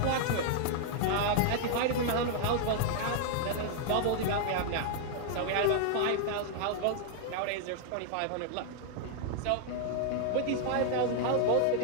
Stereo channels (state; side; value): different; both; correlation 0.00